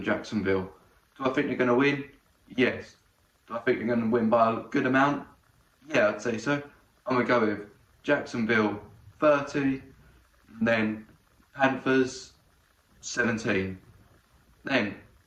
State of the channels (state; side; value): identical; both; correlation 1.00